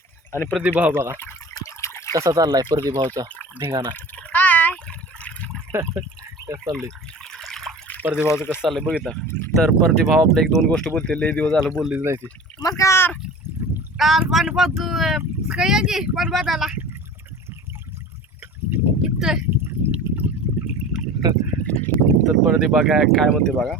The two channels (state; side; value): normal; both; correlation 0.38